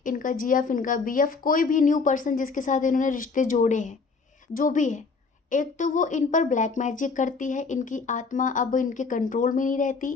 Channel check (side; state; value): right; quieter; 4.6 dB